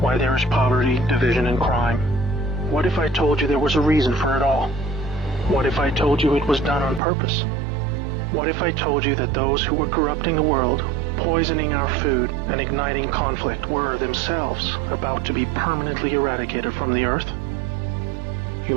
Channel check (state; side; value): drops out; left; at 7.0 s